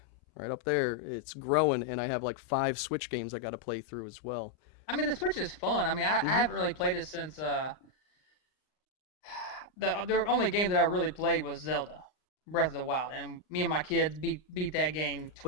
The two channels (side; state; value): right; late; 39 ms